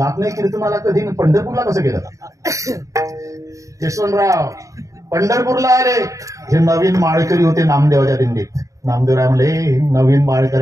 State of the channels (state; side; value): late; left; 0.16 ms